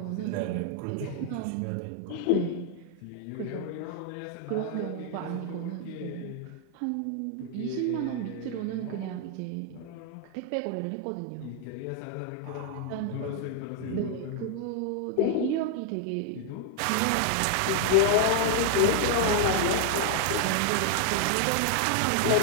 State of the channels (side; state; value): both; different; correlation 0.00